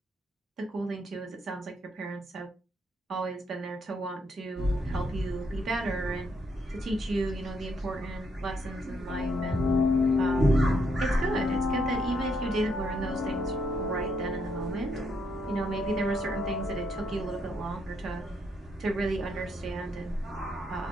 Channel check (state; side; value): normal; both; correlation 0.75